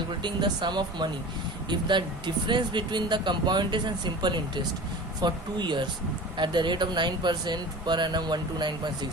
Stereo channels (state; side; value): normal; both; correlation 0.37